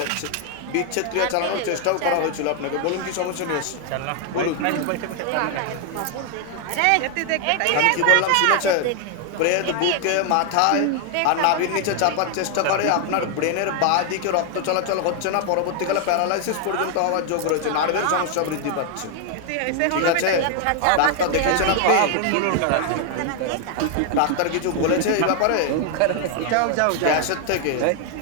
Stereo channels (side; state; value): both; different; correlation 0.01